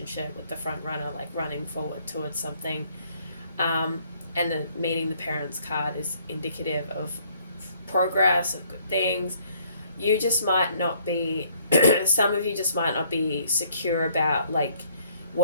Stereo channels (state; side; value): inverted; both; correlation -0.63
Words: with the front runner like running forward towards something, and the meeting the parents card is indicative of progress, of good things. You just might not be some of you just might not be secure about like